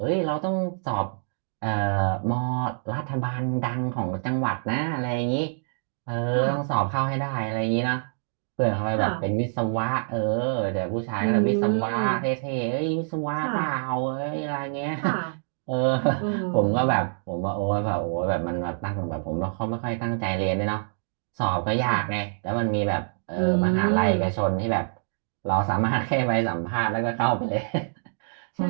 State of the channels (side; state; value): left; silent; digital silence